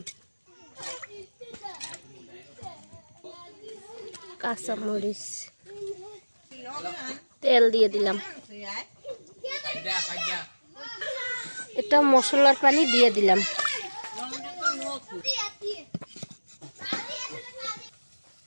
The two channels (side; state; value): both; inverted; correlation -1.00